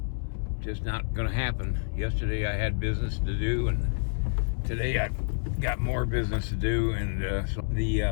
just not going to happen. Yesterday I had business to do, and today I got more business to do, and so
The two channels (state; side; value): silent; right; 59 dB below the other